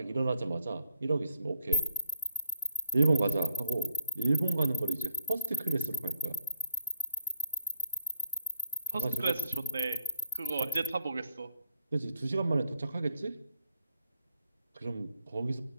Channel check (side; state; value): both; inverted; correlation -0.72